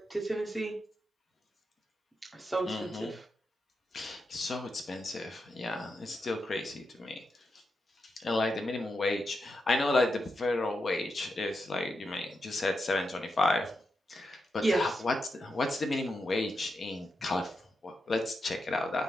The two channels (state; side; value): normal; both; correlation 0.86